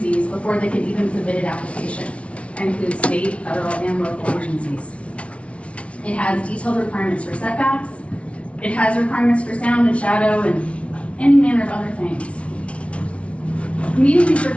before they can even submit an application. That includes state, federal, and local agencies. It has detailed requirements for setbacks. It has requirements for sound and shadow and any manner of other things. Meeting these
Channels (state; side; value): late; right; 0.062 ms